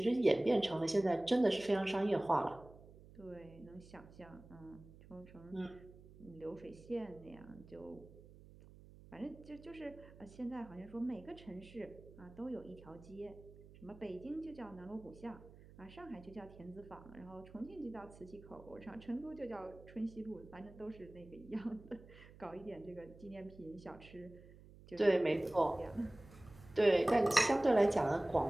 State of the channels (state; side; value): noise; right; hum, 20 dB below the sound